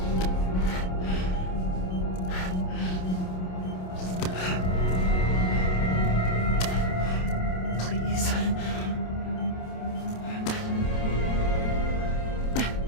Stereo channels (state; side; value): late; right; 27 ms